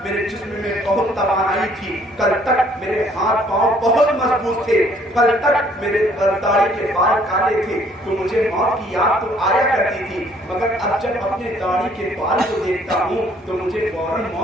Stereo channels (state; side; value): normal; both; correlation 0.61